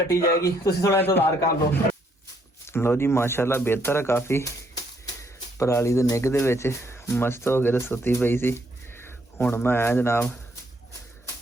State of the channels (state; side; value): normal; both; correlation 0.71